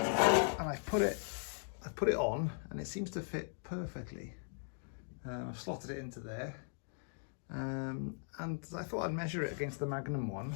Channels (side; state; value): right; silent; digital silence